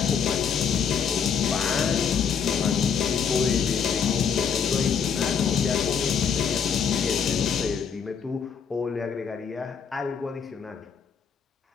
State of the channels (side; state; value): right; quieter; 6.8 dB